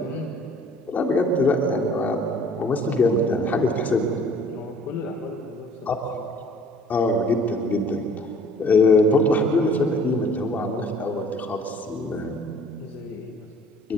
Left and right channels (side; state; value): both; normal; correlation 0.53